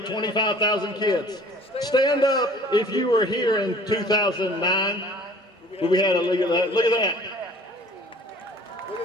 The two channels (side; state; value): both; normal; correlation 0.49